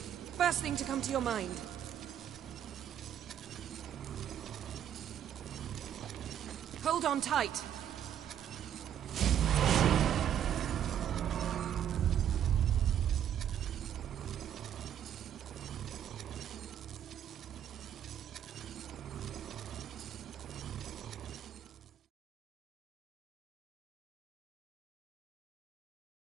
First thing to come to your mind. Hold on tight.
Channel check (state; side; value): quieter; left; 9.9 dB